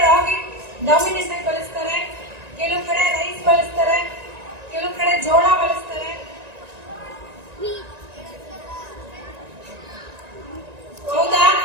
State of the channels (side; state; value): left; late; 1.9 ms